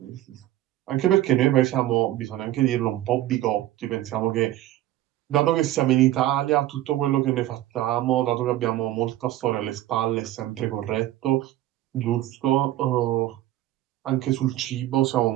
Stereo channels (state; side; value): quieter; left; 14.5 dB